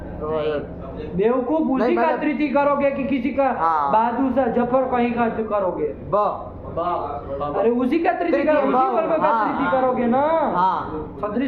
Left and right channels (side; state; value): both; identical; correlation 1.00